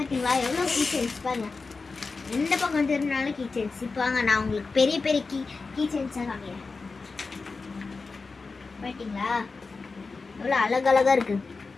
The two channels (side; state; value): right; quieter; 4.2 dB